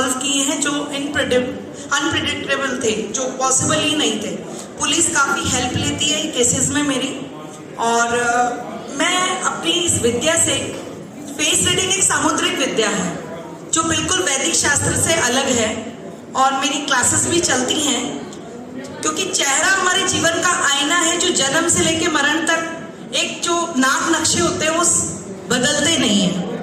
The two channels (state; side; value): identical; both; correlation 1.00